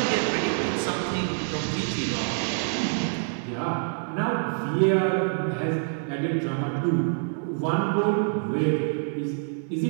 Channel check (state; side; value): silent; left; digital silence